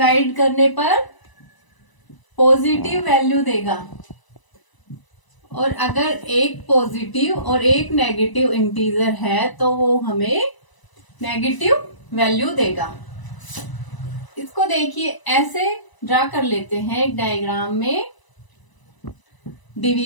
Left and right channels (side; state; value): right; late; 1.0 ms